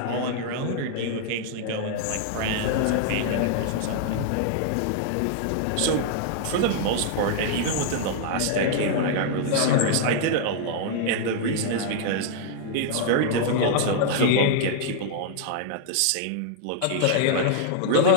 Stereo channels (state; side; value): different; both; correlation -0.01